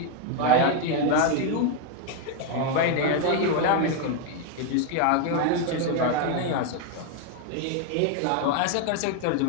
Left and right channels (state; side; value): different; both; correlation 0.01